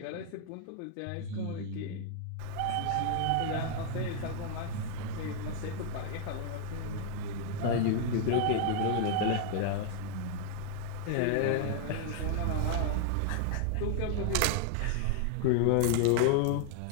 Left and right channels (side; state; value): both; different; correlation 0.00